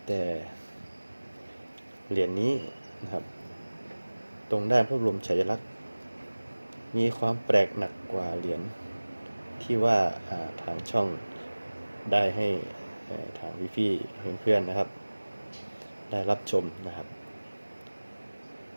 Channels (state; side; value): inverted; both; correlation -1.00